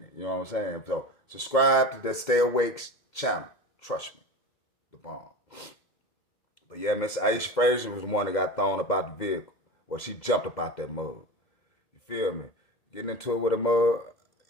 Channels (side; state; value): right; late; 2.1 ms